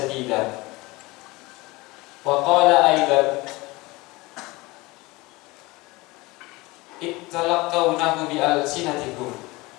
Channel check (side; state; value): right; quieter; 22.4 dB